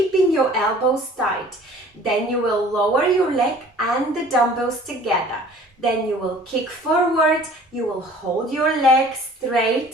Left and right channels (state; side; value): normal; both; correlation 0.49